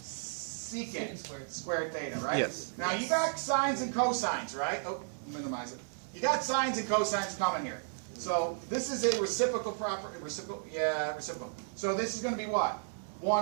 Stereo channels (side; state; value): left; silent; digital silence